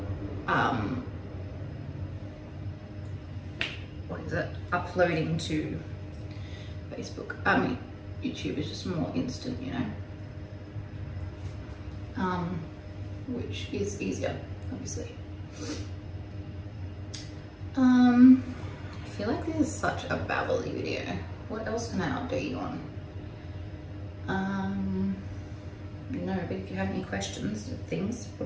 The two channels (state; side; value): identical; both; correlation 1.00